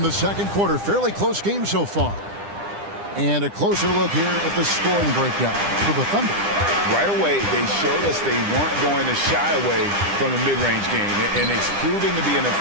the second quarter. Fairly close game so far. And a closer look here at the scoring breakdown for the Thunder. Right away, they showed us they weren't going to shy away from the mid-range game, and it's proven to be an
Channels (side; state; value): left; late; 9.9 ms